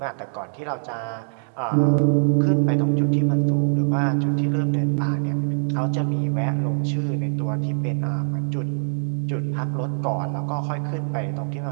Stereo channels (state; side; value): silent; left; digital silence